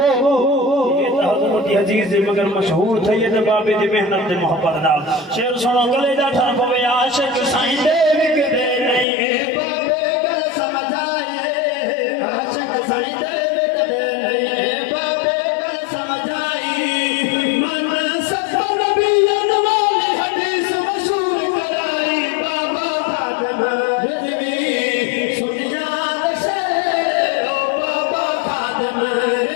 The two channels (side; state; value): right; drops out; at 9.1 s